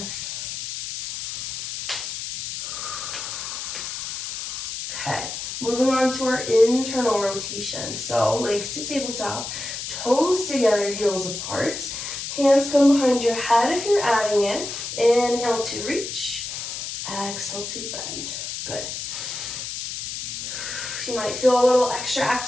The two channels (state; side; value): noise; left; hiss, 6 dB below the sound